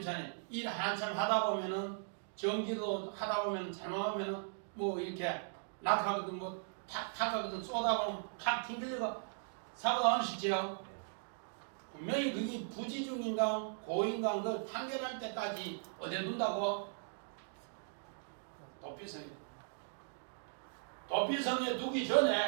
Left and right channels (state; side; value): silent; left; digital silence